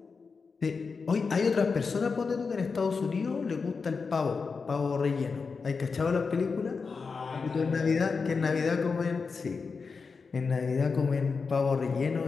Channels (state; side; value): quieter; right; 4.9 dB